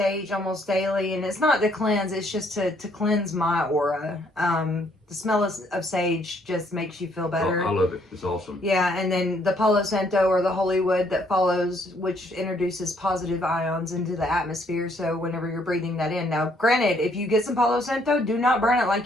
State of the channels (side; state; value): both; normal; correlation 0.68